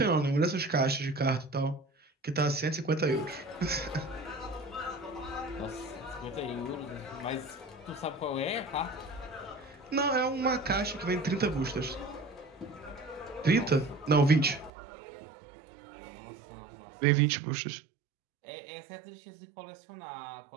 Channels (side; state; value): left; drops out; at 14.7 s